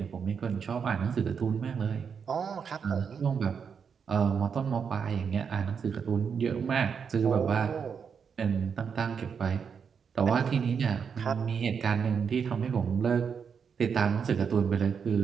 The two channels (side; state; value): left; quieter; 6.6 dB